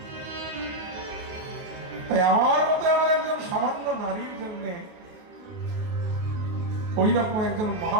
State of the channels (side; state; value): left; late; 28 ms